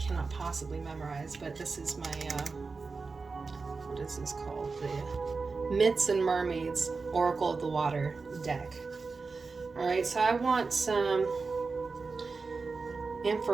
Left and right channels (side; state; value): left; quieter; 4.3 dB